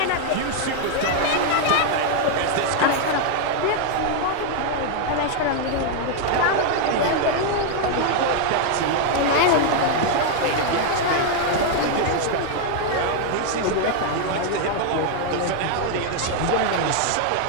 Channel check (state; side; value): different; both; correlation 0.00